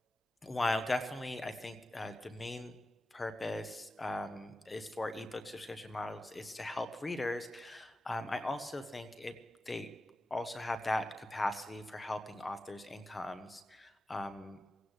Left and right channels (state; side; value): normal; both; correlation 0.92